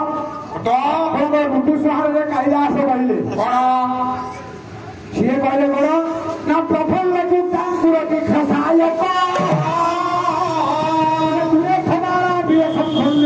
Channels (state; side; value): identical; both; correlation 1.00